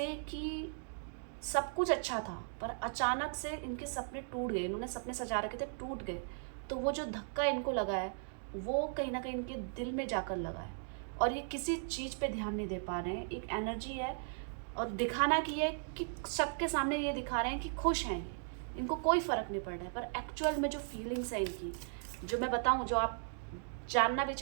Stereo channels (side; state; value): left; silent; digital silence